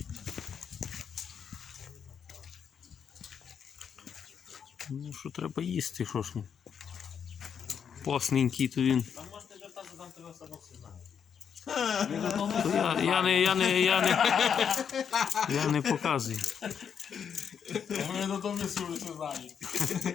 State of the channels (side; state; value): right; quieter; 7.5 dB